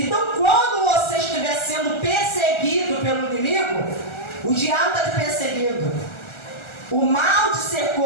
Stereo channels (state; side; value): late; right; 1.3 ms